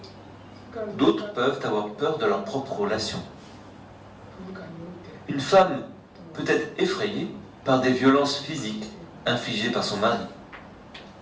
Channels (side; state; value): both; identical; correlation 1.00